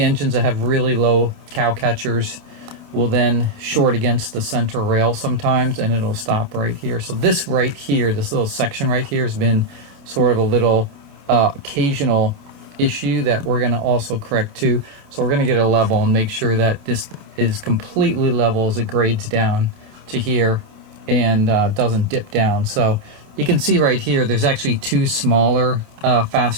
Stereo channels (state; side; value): late; left; 28 ms